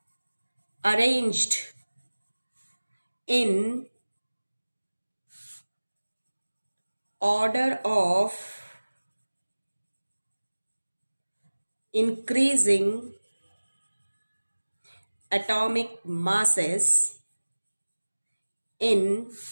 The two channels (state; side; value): inverted; both; correlation -1.00